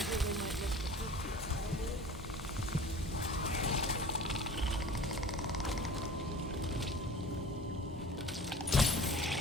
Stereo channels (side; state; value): both; normal; correlation 0.42